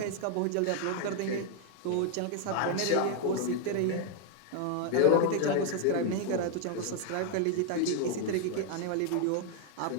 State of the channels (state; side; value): different; both; correlation 0.01